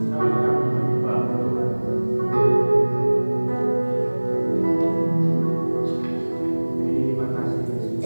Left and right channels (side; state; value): both; inverted; correlation -1.00